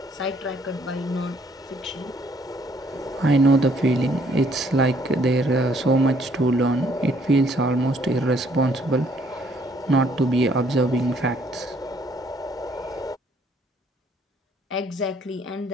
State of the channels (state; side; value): normal; both; correlation 0.65